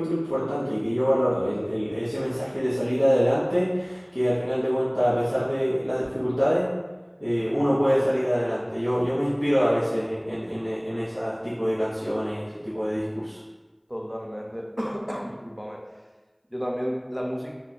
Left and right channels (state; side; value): identical; both; correlation 1.00